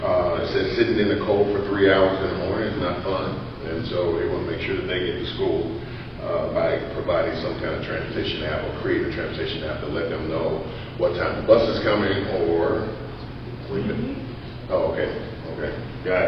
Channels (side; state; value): both; identical; correlation 1.00